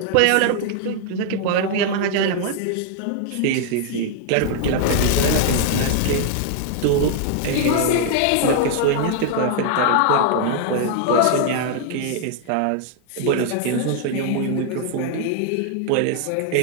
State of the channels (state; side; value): different; both; correlation 0.00